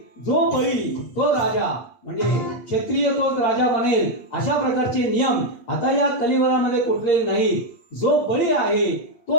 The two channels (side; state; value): right; late; 8.4 ms